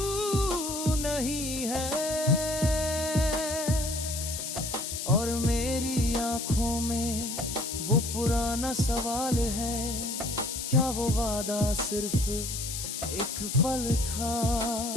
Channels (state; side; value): noise; left; hiss, 5 dB below the sound